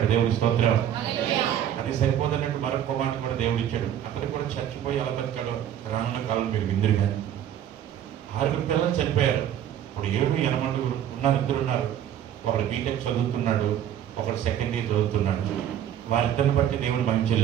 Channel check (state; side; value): quieter; left; 10.4 dB